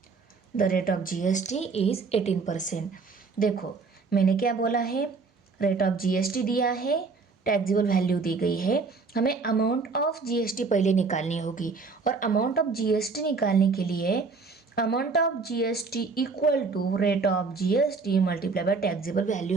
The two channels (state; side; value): quieter; left; 4.4 dB